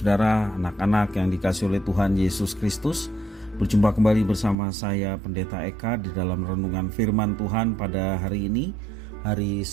anak-anak yang dikasihi oleh Tuhan Yesus Kristus. Berjumpa kembali bersama saya Pendeta Eka di dalam renungan firman Tuhan pada hari ini, hari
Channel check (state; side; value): drops out; left; at 4.5 s